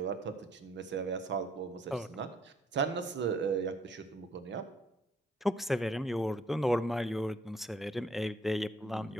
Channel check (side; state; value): both; normal; correlation 0.65